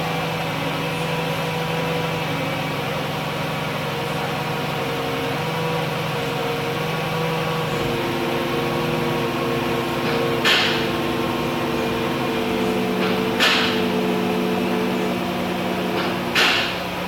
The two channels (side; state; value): both; identical; correlation 1.00